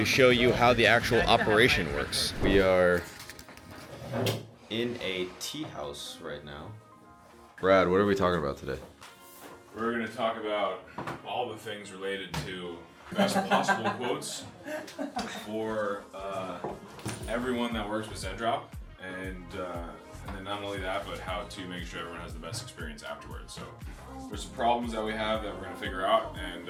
show you how the actual operation works. We are in a tea house right now. Brad, what are we talking about today? We're gonna talk about all the things related to best possible quotes for everyone that works with Zendrop, and then not only that, but how to make sure everyone has the best experience afterwards. So there's some problems that we have that we're gonna figure out and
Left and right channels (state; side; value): identical; both; correlation 1.00